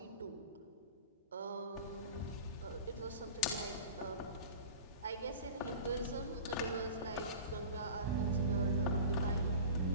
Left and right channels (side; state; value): both; inverted; correlation -0.36